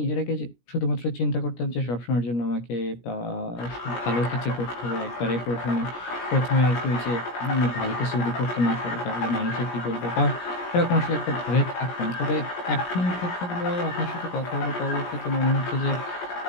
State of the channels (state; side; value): late; right; 17 ms